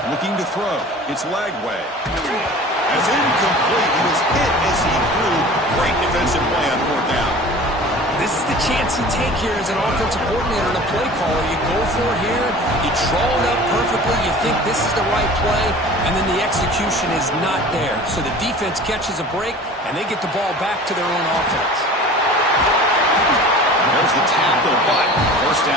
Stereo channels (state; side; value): normal; both; correlation 0.42